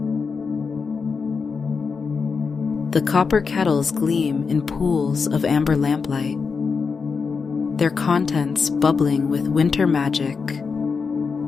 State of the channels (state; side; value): quieter; right; 5.2 dB